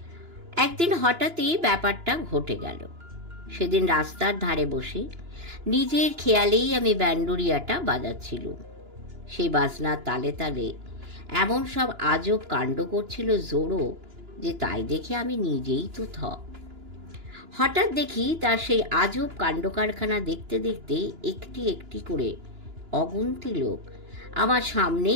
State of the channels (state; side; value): late; left; 2.9 ms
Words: একদিন হঠাৎই ব্যাপারটা ঘটে গেল। সেদিন রাস্তার ধারে বসে নিজের খেয়ালেই আমি ব্যান্ডোরিয়াটা বাজাচ্ছিলুম। সেই বাজনার তালে তালে এমন সব আজব কাণ্ড করছিল জোড়ো যে তাই দেখে আমি নিজেই তো থ। হঠাৎ দেখি তার সেই আজব কাণ্ড কারখানা দেখতে দেখতে একটি একটি করে অগুন্তি লোক আমার সামনে